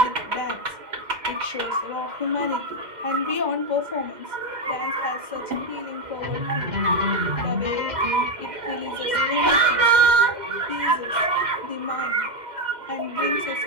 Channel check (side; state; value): left; late; 2.1 ms